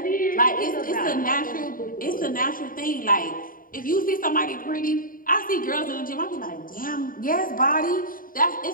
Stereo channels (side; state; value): right; late; 0.41 ms